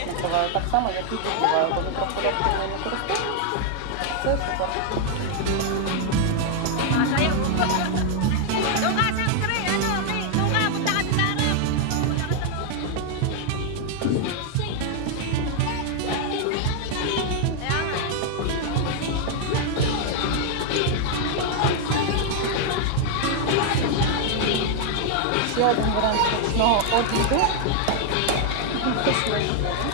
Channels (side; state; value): both; different; correlation 0.00